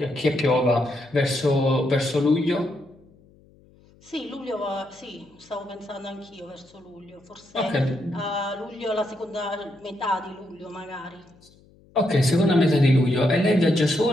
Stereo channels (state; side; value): noise; left; hum, 28 dB below the sound